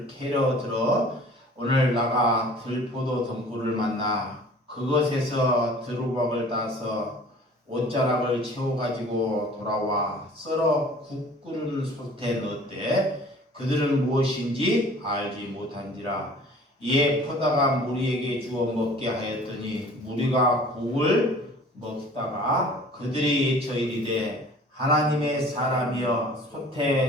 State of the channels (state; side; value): normal; both; correlation 0.48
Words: 캐러 들어 오늘 나가 들포도 덩굴을 만나 그것에서 두루박을 따서 옷자락을 채워가지고 돌아와 썰어 국 끓는 솥에 넣었대. 그들은 무엇인지 알지 못한지라. 이에 퍼다가 무리에게 주어 먹게 하였더니 무리가 국을 먹다가 그들이 외쳐 이르되 하나님의 사람이여